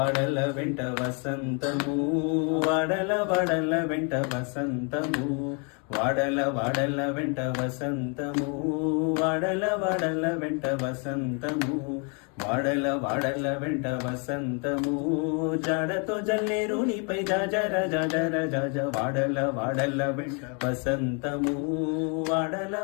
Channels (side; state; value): right; quieter; 36.3 dB